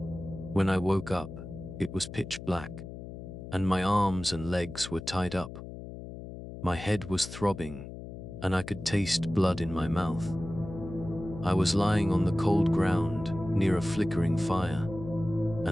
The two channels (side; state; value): left; noise; hum, 11 dB below the sound